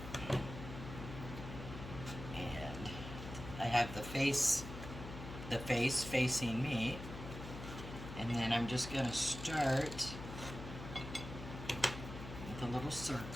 And I have the face facing me. And then I'm just going to start with a little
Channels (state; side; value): noise; left; hum, 10 dB below the sound